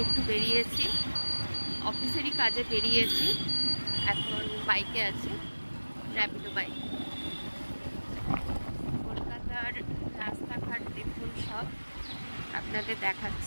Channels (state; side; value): inverted; both; correlation -1.00